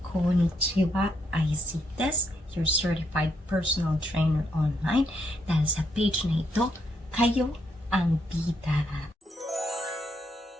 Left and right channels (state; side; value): normal; both; correlation 0.76